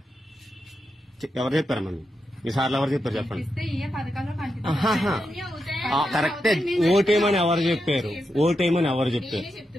ఎవరు చెప్పారమ్మా? ఈసార్లు ఎవరు చెప్పారు చెప్పండి. కరెక్టే, ఓటేయమని ఎవరు చెప్పారు? ఓటేయమని ఎవరు చెప్పారు?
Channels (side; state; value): both; normal; correlation 0.86